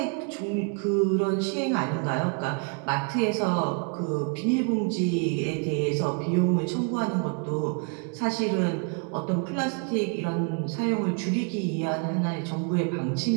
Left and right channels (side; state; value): left; quieter; 38.7 dB